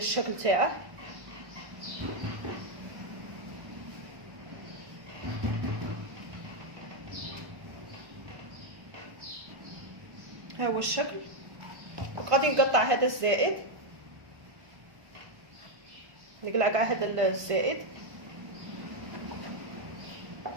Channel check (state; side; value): late; left; 1.5 ms